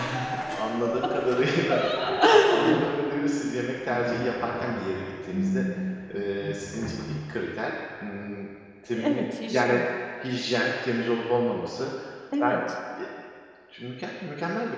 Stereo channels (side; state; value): both; identical; correlation 1.00